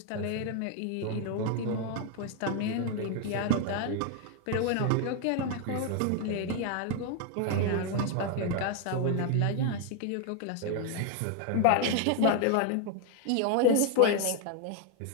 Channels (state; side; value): different; both; correlation 0.00